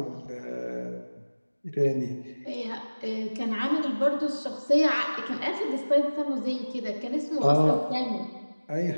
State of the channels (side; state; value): both; inverted; correlation -1.00